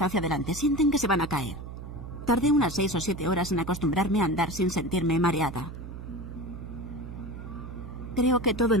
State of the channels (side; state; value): right; noise; hum, 10 dB below the sound